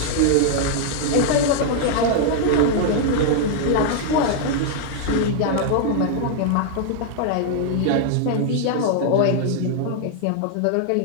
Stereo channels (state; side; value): different; both; correlation -0.01